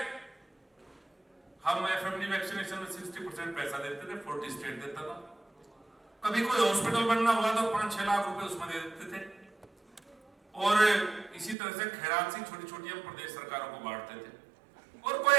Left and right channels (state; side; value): drops out; left; at 11.6 s